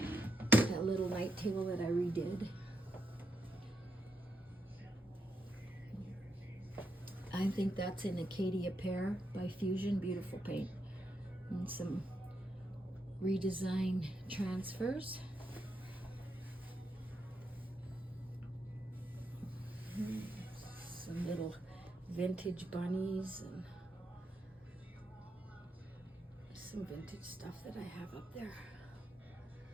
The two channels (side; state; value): both; normal; correlation 0.82